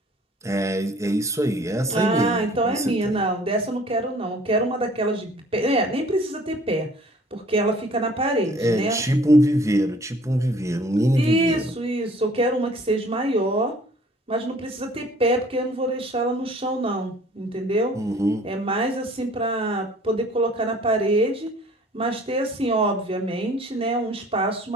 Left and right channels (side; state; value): both; normal; correlation 0.53